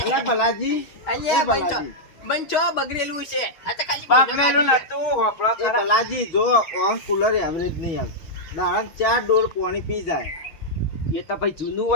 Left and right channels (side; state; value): right; late; 6.4 ms